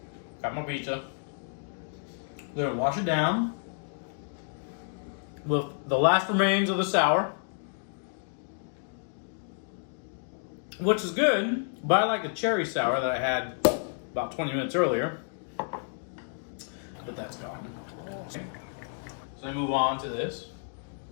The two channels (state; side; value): silent; right; digital silence